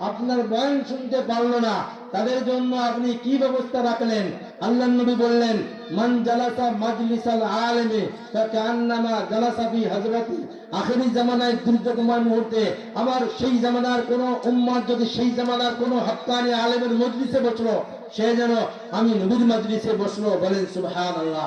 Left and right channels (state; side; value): identical; both; correlation 1.00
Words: আপনার বয়ান শুনতে পারলো না, তাদের জন্য আপনি কি ব্যবস্থা রাখলেন? আল্লাহর নবী বললেন, মান জালাসা মাজলিসাল আলিমি ফাকান্নামা জালাসা ফি হযরতি। আখেরি জামানায় দুর্যোগময় মুহূর্তে আমার সেই জামানার কোন উম্মত যদি সেই জামানার কোন হক্কানি আলেমের মজলিসে বসলো, সে যেন আমি নবীর মজলিসে বসলো। বলেন সুবহানাল্লাহ।